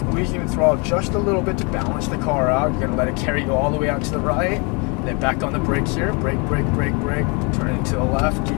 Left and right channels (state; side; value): quieter; right; 31.9 dB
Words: the throttle just a little bit to balance the car out. You're going to let it carry you all the way out to the right. And then back on the brakes here. Brake. Turn it to the left.